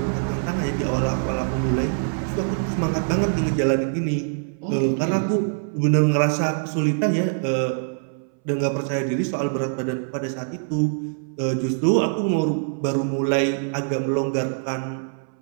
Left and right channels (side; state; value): left; silent; 61 dB below the other